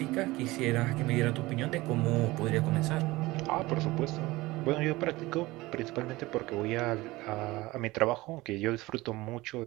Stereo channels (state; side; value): quieter; left; 20.1 dB